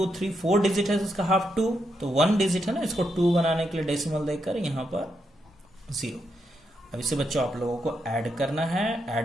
3 4 डिजिट है, तो इसका हाफ 2, तो 1 डिजिट है ना, इसको 2 बनाने के लिए डेसिमल देकर यहाँ पर 0। अब इसे बच्चों आप लोगों को ऐड करना है।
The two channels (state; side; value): normal; both; correlation 0.82